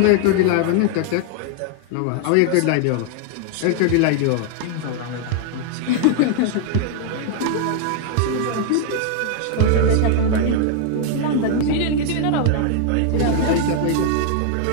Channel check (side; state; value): both; different; correlation 0.00